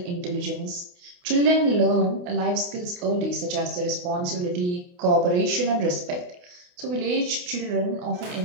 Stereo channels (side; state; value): left; late; 28 ms